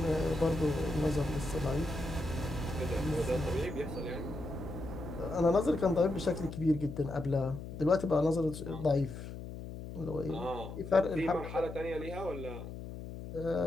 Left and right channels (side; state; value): left; noise; hum, 10 dB below the sound